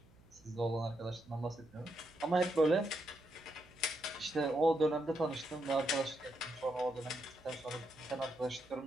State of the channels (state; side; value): noise; right; hum, 27 dB below the sound